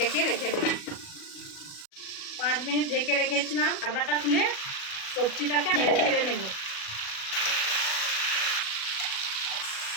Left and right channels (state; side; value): late; right; 37 ms